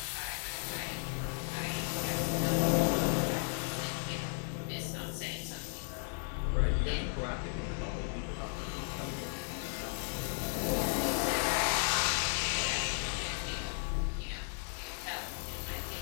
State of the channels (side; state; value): right; silent; 54 dB below the other